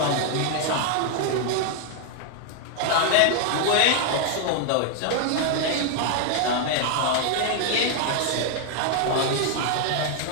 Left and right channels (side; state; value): both; different; correlation 0.00